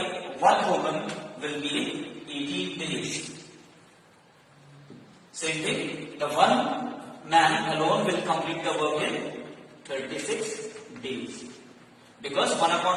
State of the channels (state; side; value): identical; both; correlation 1.00